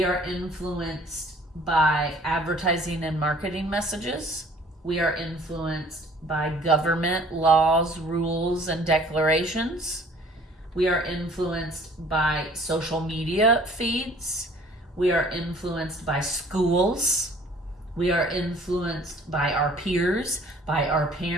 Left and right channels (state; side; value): normal; both; correlation 0.53